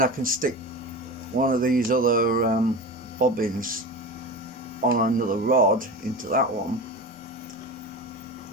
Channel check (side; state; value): both; normal; correlation 0.28